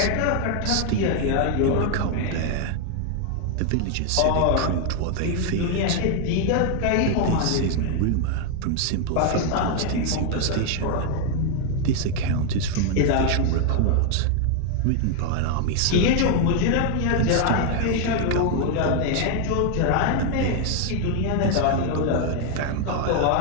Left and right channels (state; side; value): different; both; correlation 0.00